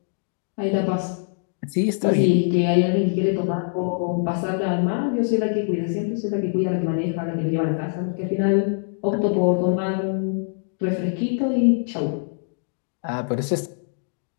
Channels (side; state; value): right; silent; digital silence